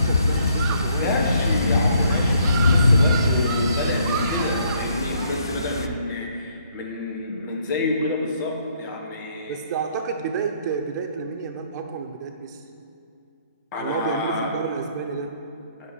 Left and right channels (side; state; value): both; inverted; correlation -0.67